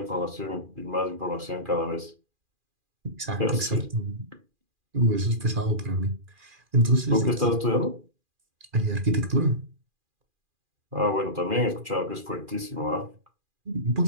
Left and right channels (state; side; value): late; left; 2.4 ms